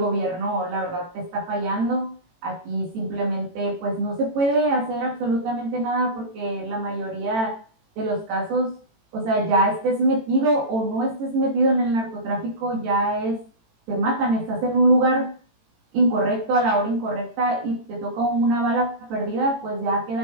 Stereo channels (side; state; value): left; late; 18 ms